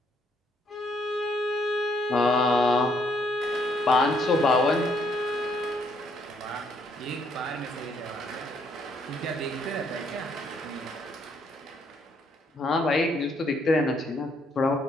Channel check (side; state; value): both; normal; correlation 0.70